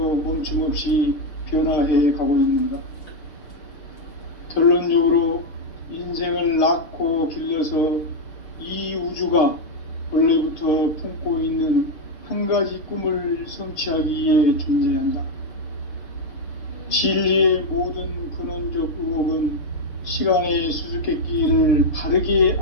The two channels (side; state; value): right; late; 6.6 ms